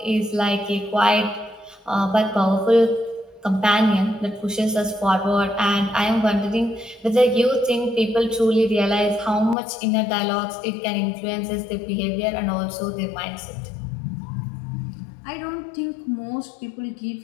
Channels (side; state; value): right; drops out; at 9.6 s